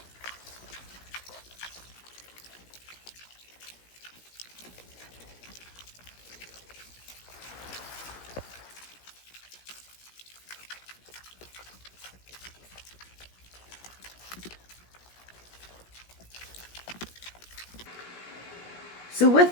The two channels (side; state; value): right; late; 17 ms